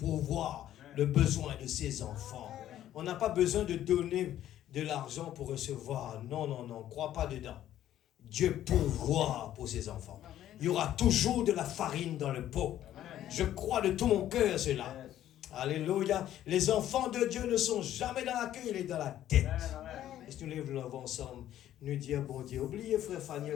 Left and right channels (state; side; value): quieter; right; 12.2 dB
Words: le besoin de ses enfants. On n'a pas besoin de donner de l'argent pour recevoir. Non, non, non, crois pas dedans. Dieu pourvoit pour ses enfants. Il y aura toujours de la farine dans le pot. Je crois de tout mon cœur cela. Alléluia. Les enfants de Dieu ne sont jamais dans la queue, il est dans la tête. Est-ce que nous lèvons ensemble, nous dire, bon Dieu, oubliez frère